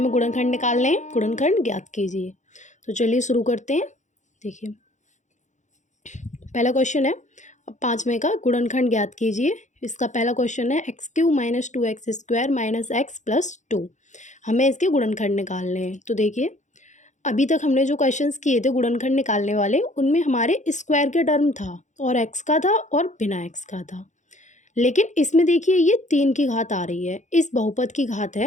गुणनखंड निकालने हैं। गुणनखंड ज्ञात कीजिए। तो चलिए शुरू करते हैं। देखिए, पहला क्वेश्चन है 5वें का, गुणनखंड ज्ञात कीजिए। इसका पहला क्वेश्चन है x³ - 2x² - x+2। हमें इसके गुणनखंड निकालने हैं। तो देखिए, अभी तक हमने जो क्वेश्चंस किए थे गुणनखंड निकालने वाले, उनमें हमारे स्क्वायर के टर्म था और x का था और बिना x का था। लेकिन इसमें देखिए, ये 3 की घात आ रही है। इस बहुपद की घात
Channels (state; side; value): late; right; 0.35 ms